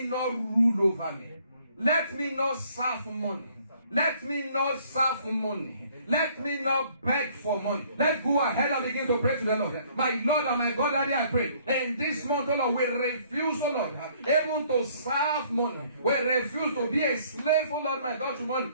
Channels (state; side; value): inverted; both; correlation -0.61